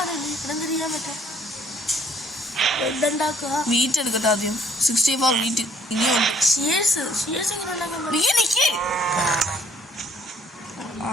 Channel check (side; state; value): both; normal; correlation 0.62